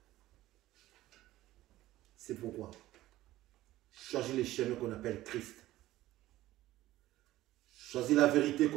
C'est pourquoi choisis les chemins qu'on appelle Christ. Choisis la vérité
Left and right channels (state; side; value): quieter; left; 15.7 dB